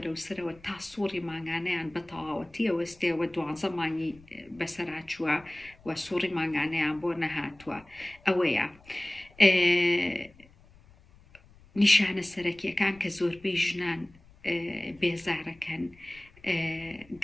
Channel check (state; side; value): noise; left; rumble, 26 dB below the sound